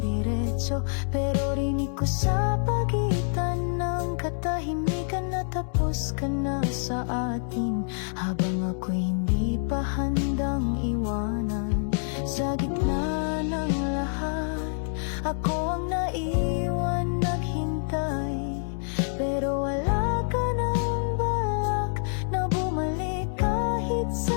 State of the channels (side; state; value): right; silent; digital silence